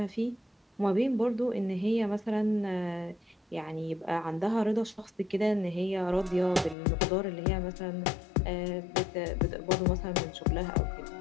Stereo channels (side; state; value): right; drops out; at 6.8 s